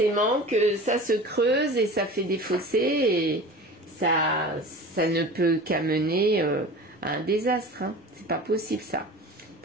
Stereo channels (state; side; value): normal; both; correlation 0.37